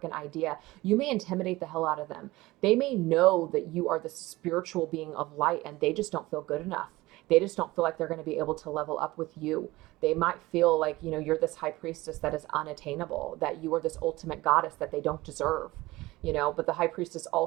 idea. You may intimidate the hell out of them. They may know that you are the spiritual being of light and they just don't feel good enough. They just don't feel like they're going to be able to level up with you. They might feel like, you're this high priestess that is unattainable, that you are this ultimate goddess that they don't deserve, but the High Priestess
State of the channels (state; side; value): quieter; left; 19.5 dB